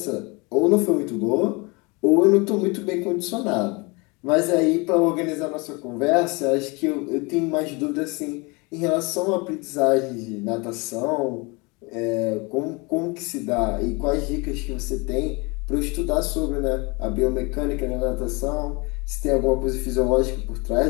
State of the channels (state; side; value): quieter; right; 27.9 dB